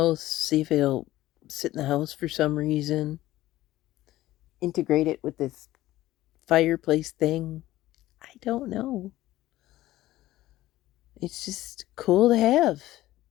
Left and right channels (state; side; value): quieter; right; 15.8 dB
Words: see if it'll sit in the house for some reason. Integrate it with this fireplace thing. I don't know. It's just cool to have.